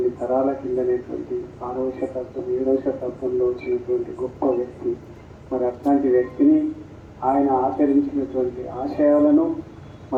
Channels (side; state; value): both; identical; correlation 1.00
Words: తరాల కిందనేటువంటి 6వ శతాబ్దం 7వ శతాబ్దంలో వచ్చినటువంటి గొప్ప వ్యక్తి. మరి అట్లాంటి వ్యక్తిని ఆయన ఆచరించినటువంటి ఆశయాలను